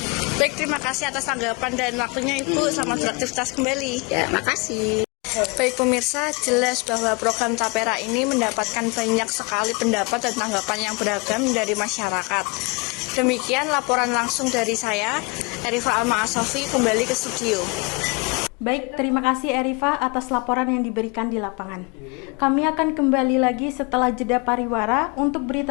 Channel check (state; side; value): quieter; right; 29.2 dB